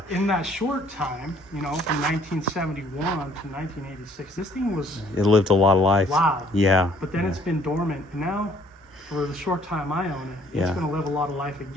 in that short time, you know, from 1971 to 1986, this thing was It lived a lot of life. loud. Yeah. But then it's been dormant. And now, for the short time I own it, Yeah. it's going to live a lot of life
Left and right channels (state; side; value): normal; both; correlation 0.60